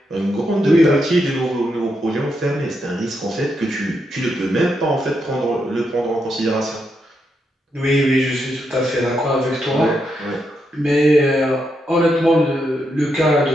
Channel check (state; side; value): normal; both; correlation 0.82